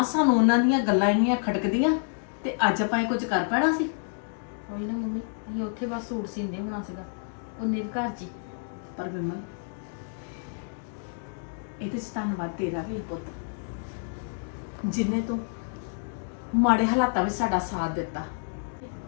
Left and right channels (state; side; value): silent; right; digital silence